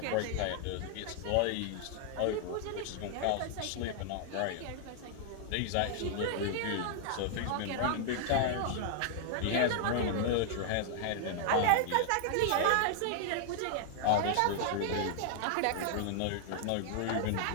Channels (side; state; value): both; different; correlation 0.00